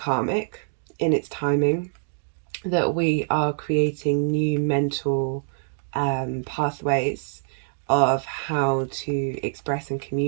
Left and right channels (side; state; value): left; silent; digital silence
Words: in its timing, that we are creating new mental pathways of how to express and